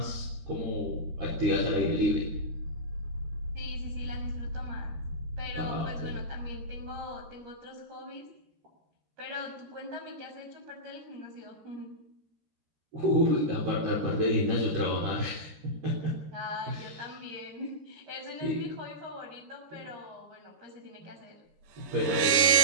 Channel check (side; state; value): left; late; 14 ms